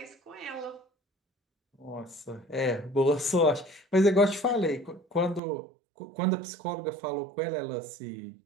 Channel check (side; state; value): left; drops out; at 5.4 s